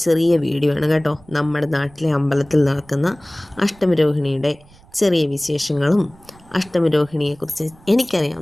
ചെറിയ വീഡിയോ ആണ് കേട്ടോ. നമ്മുടെ നാട്ടിലെ അമ്പലത്തിൽ നടക്കുന്ന അഷ്ടമിരോഹിണിയുടെ ചെറിയ വിശേഷങ്ങളും അഷ്ടമിരോഹിണിയെക്കുറിച്ച്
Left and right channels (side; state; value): right; noise; rumble, 26 dB below the sound